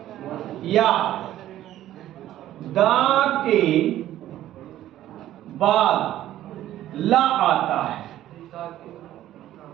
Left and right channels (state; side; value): quieter; left; 13.2 dB